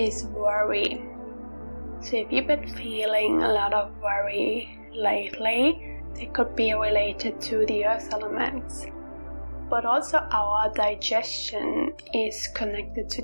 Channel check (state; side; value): inverted; both; correlation -1.00